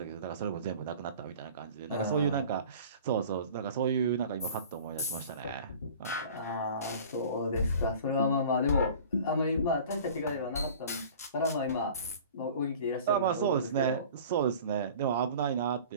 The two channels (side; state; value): both; inverted; correlation -0.43